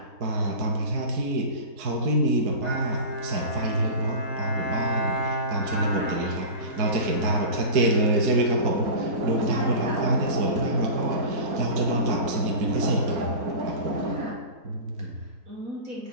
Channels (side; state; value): left; late; 4.6 ms